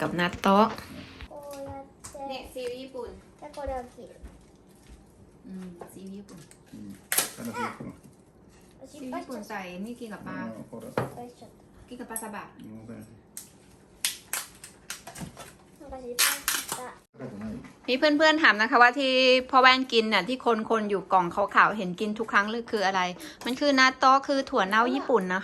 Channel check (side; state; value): both; identical; correlation 1.00